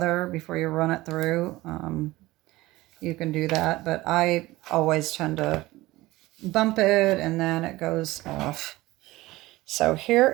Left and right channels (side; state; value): left; quieter; 18.7 dB